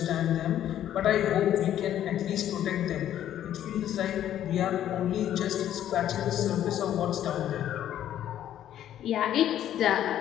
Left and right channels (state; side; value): quieter; right; 11.3 dB